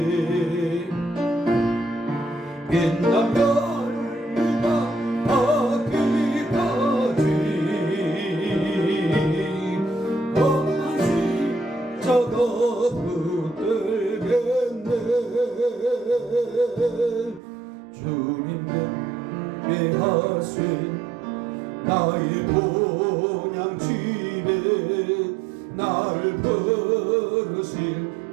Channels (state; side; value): drops out; left; at 17.4 s